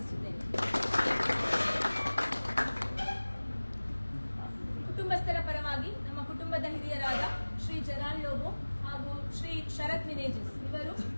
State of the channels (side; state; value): both; inverted; correlation -1.00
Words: ಕುಟುಂಬಸ್ಥರ ಪರವಾಗಿ ನಮ್ಮ ಕುಟುಂಬದ ಹಿರಿಯರಾದ ಶ್ರೀ ಜರಾಲ್ ಲೋಬೋ ಹಾಗೂ ಶ್ರೀ ಶರತ್ ಮಿನೇಜಸ್ ಇವರು